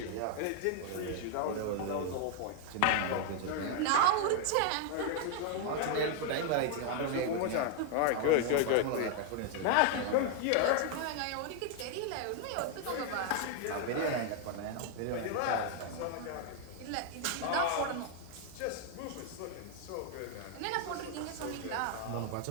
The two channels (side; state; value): both; different; correlation 0.00